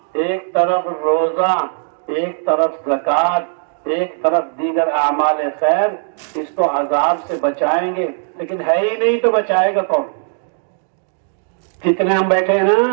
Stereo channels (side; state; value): left; silent; digital silence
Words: ایک طرف روزہ، ایک طرف زکوٰۃ، ایک طرف دیگر اعمال خیر، اس کو عذاب سے بچائیں گے، لیکن ہے ہی نہیں تو بچائے گا کون؟ جتنے ہم بیٹھے ہیں